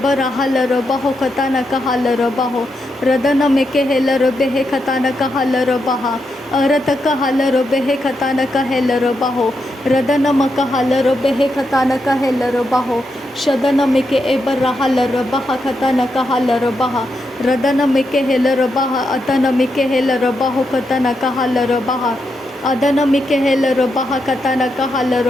हलर बहो कतान कहलर बहो रदन मिके हेलर बेहे कतान कहलर बहा अरत कहल रो बेहे खतान कहल रो बाहो रदन कहल रो बेहे खतान कहल रो बाहो शदन मिके एबर रहल रो बहा खतान कहल रो बहा रदन मिके हेल रो बहा अतन मिके हेल रो बाहो खतान कहल रो बहा अदन मिके हेल रो बहा खतान कहल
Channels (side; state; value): both; normal; correlation 0.83